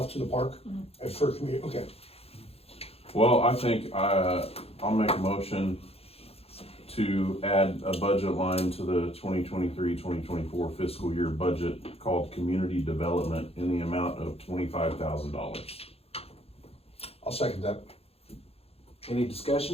to the park, for community, okay. Well, I think I'll make a motion to add a budget line to the 2023-2024 fiscal year budget called Community Development in the amount of $25,000. I'll second that. Any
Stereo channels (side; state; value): right; late; 0.29 ms